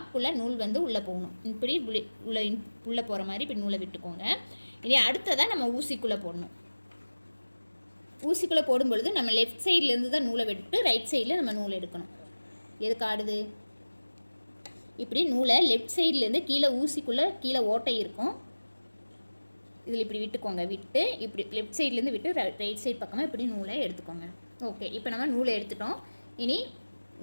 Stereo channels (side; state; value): both; inverted; correlation -1.00